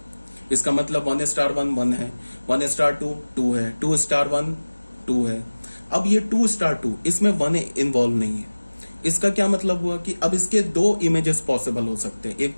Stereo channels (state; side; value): inverted; both; correlation -1.00